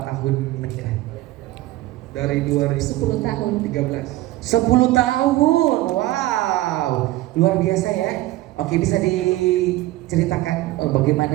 tahun menikah? dari 10 tahun. 2013. 10 tahun, wow, luar biasa ya. Oke, bisa diceritakan bagaimana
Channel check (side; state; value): left; quieter; 17.1 dB